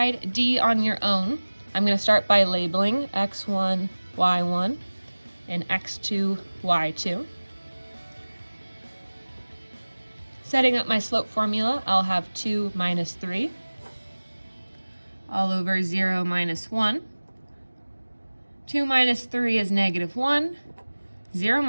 D on your own. I'm going to start by labeling x1, y1, and x2, y2. Setting up my slope formula, I'll have 2 minus 3 all over 0 minus 1. 2 minus 3 is -1. 0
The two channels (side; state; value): both; inverted; correlation -1.00